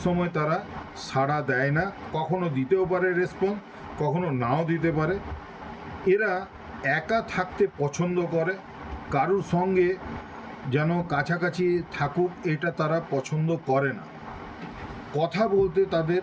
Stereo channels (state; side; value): identical; both; correlation 1.00